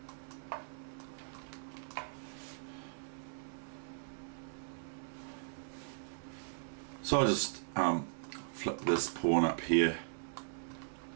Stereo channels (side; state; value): left; silent; digital silence